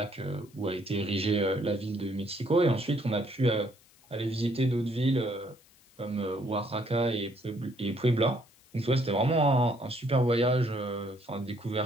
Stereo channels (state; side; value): noise; left; hiss, 29 dB below the sound